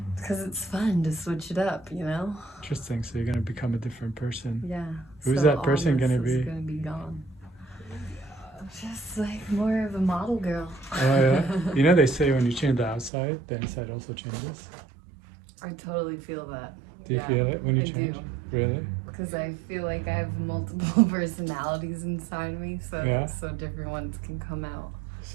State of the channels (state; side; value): drops out; left; at 13.1 s